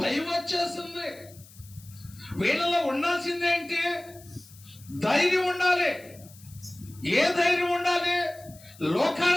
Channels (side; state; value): left; noise; hiss, 23 dB below the sound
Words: భయం వచ్చేసింది. వీళ్ళలో ఉండాల్సింది ఏంటి? ధైర్యం ఉండాలి. ఏ ధైర్యం ఉండాలి?